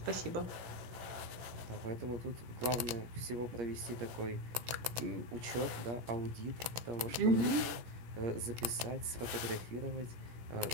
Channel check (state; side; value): late; left; 16 ms